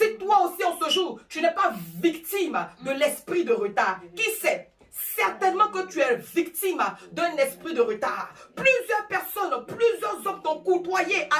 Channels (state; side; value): identical; both; correlation 1.00